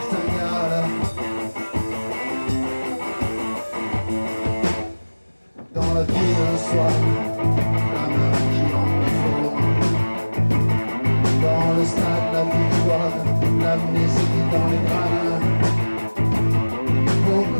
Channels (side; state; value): both; inverted; correlation -1.00